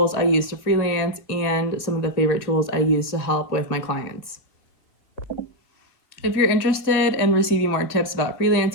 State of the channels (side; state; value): right; late; 1.8 ms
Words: I use to freelance and some of the favorite tools I use to help with my clients. If you're interested in receiving more tips about